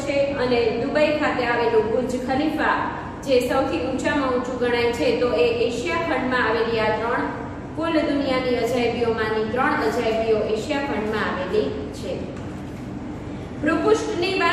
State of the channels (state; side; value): identical; both; correlation 1.00